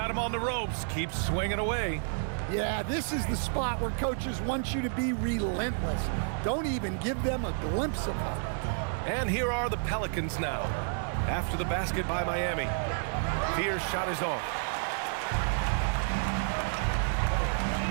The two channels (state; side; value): silent; left; 58 dB below the other